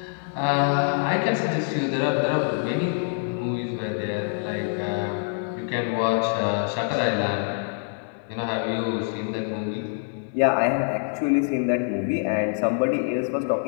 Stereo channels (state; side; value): silent; right; 62 dB below the other